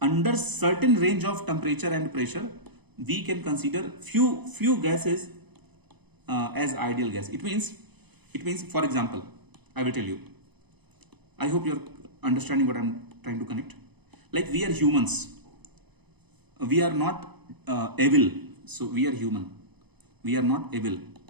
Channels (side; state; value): left; late; 0.99 ms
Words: under certain range of temperature and pressure, we can consider few gases as ideal gas. It means for example, I will tell you. I hope you're understanding what I'm trying to connect. Like we are humans. We are not evil. So we are human. We are not evil.